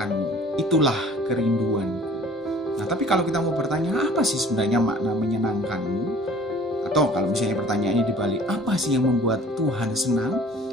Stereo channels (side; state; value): both; normal; correlation 0.50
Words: itulah kerinduanku. Nah, tapi kalau kita mau bertanya, apa sih sebenarnya makna menyenangkanmu? Atau kalau misalnya pertanyaannya dibalik, apa sih yang membuat Tuhan senang?